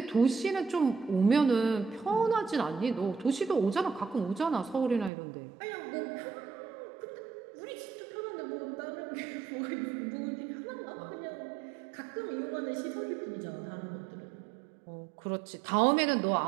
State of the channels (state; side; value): drops out; left; at 5.1 s